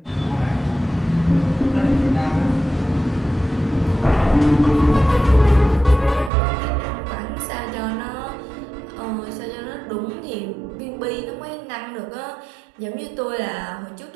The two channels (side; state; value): left; drops out; at 6.3 s